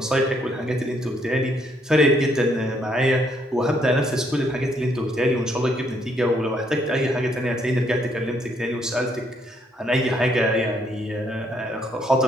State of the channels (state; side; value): normal; both; correlation 0.71